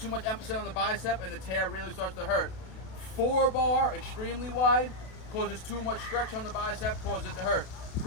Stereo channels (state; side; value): late; right; 32 ms